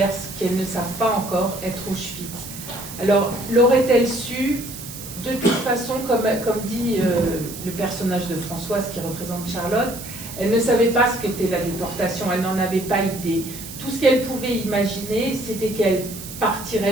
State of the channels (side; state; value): right; noise; hiss, 12 dB below the sound